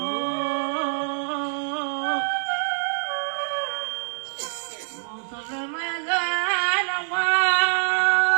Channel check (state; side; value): silent; left; digital silence